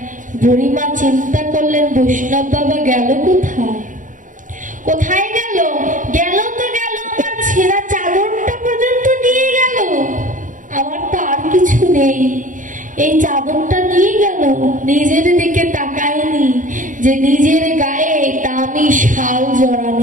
বুড়িমা চিন্তা করলেন বৈষ্ণব বাবা গেল কোথায়? কোথায় গেল? গেল তো গেল, আমার ছেঁড়া চাদরটা পর্যন্ত নিয়ে গেল, আমার তো আর কিছু নেই, এই চাদরটা নিয়ে গেল। নিজের দিকে তাকায়নি যে নিজের গায়ে দামি শাল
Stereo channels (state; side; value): late; left; 0.38 ms